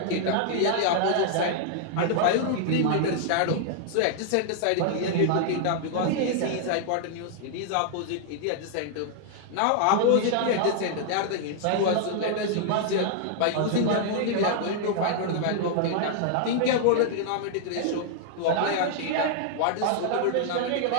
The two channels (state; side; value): different; both; correlation -0.01